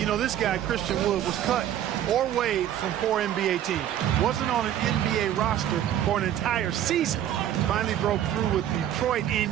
know, this guy, Christian Wood, was cut or waived from 4 NBA teams. Wasn't on an NBA roster for an entire season. Finally broke through with Detroit in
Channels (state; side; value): quieter; left; 11.2 dB